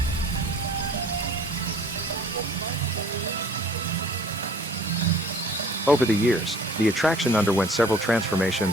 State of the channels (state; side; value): normal; both; correlation 0.52